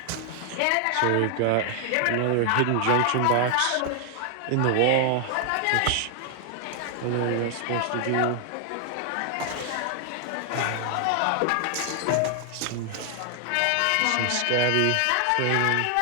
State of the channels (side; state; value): both; different; correlation 0.00